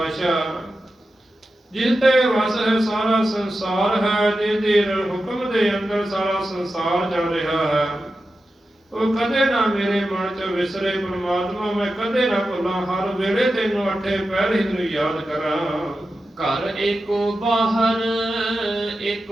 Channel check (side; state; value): both; normal; correlation 0.91